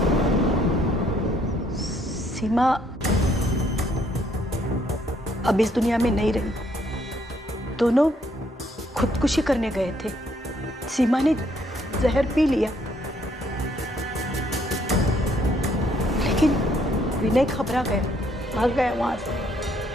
सीमा अब इस दुनिया में नहीं रही। दोनों खुदकुशी करने गए थे। सीमा ने जहर पी लिया, लेकिन विनय घबरा गया, भाग गया वहां से।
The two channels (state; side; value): normal; both; correlation 0.68